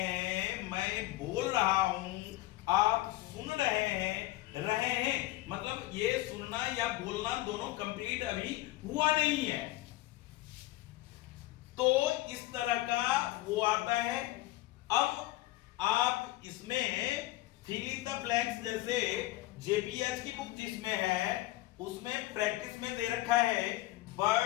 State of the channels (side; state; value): right; quieter; 17.7 dB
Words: मैं बोल रहा हूं, आप सुन रहे हैं, मतलब ये सुनना या बोलना दोनों कंप्लीट अभी हुआ नहीं है। तो इस तरह का वो आता है। अब आप इसमें फिल इन द ब्लैंक्स, जैसे जेपीएच की बुक जिसमें है उसमें प्रैक्टिस में दे रखा है